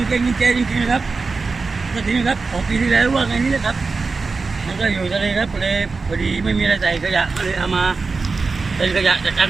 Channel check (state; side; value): quieter; left; 4.3 dB